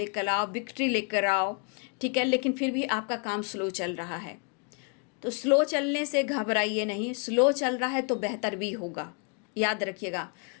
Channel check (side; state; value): right; quieter; 38.3 dB